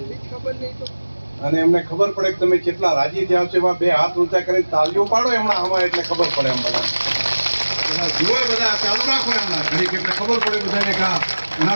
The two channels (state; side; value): inverted; both; correlation -1.00